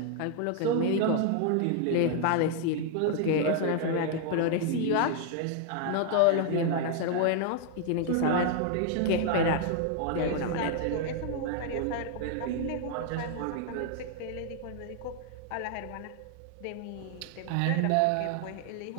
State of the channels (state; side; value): different; both; correlation 0.00